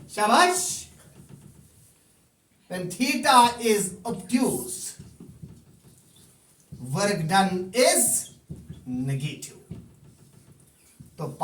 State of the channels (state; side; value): identical; both; correlation 1.00